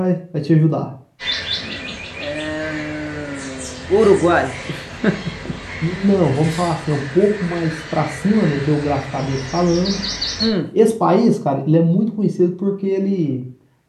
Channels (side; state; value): both; identical; correlation 1.00